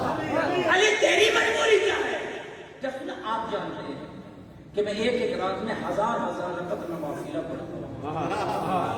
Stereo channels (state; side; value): identical; both; correlation 1.00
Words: علی تیری مجبوری کیا ہے؟ جب آپ جانتے ہیں کہ میں ایک رات میں ہزار رکعت نوافلہ پڑھتا ہوں.